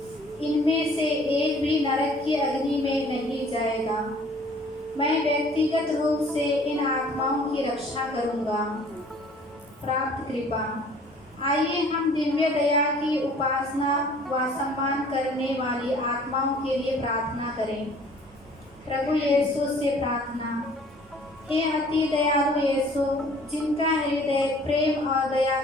इनमें से एक भी नरक की अग्नि में नहीं जाएगा। मैं व्यक्तिगत रूप से इन आत्माओं की रक्षा करूंगा। प्राप्त कृपा। आइए हम दिव्य दया की उपासना व सम्मान करने वाली आत्माओं के लिए प्रार्थना करें। प्रभु यीशु से प्रार्थना। हे अति दयालु यीशु, जिनका हृदय प्रेम और दया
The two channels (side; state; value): both; normal; correlation 0.53